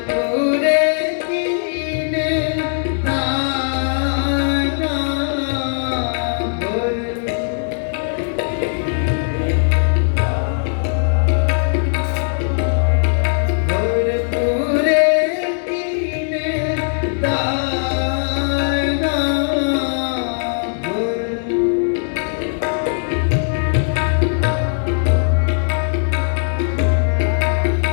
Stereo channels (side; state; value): right; silent; digital silence